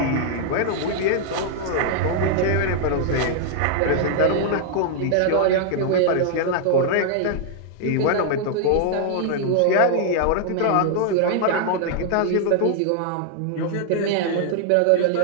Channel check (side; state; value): both; different; correlation 0.00